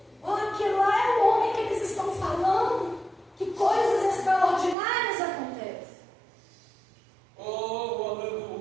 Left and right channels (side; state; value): left; drops out; at 4.8 s